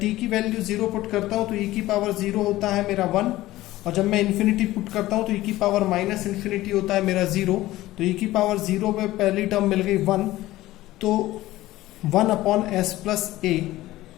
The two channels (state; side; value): quieter; right; 16.6 dB